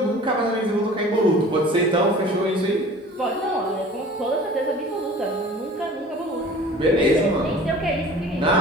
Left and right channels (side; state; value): both; normal; correlation 0.45